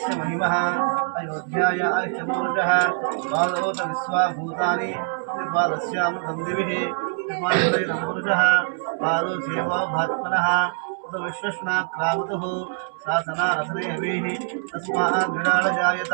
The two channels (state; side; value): silent; left; 63 dB below the other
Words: महिमः अयोध्याय आयुष्यपूरुषः बालोत विश्वाभूतानि त्रिपादस्यामृतं दिविः त्रिपादोदयं पुरुषः बालो सेवा भात्मनः विश्वस्नाक्रामतुः शासनारसनेभिः तस्मात् विराड जायत